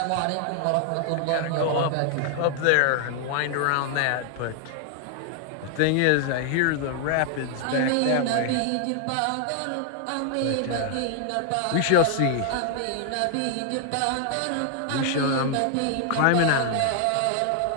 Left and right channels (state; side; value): different; both; correlation 0.00